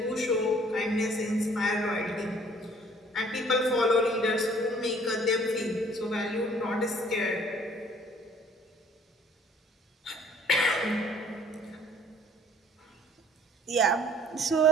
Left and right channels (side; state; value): both; normal; correlation 0.56